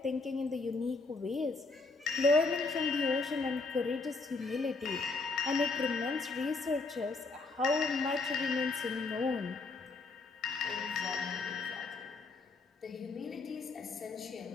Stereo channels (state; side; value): quieter; right; 3.8 dB